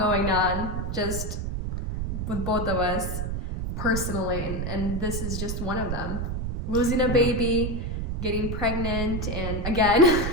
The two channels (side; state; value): right; noise; rumble, 2 dB below the sound